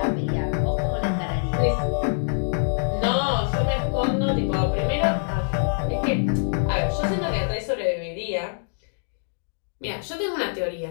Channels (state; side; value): silent; right; digital silence